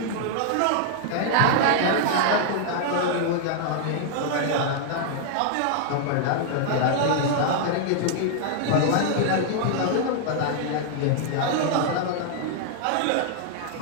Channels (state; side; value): different; both; correlation -0.01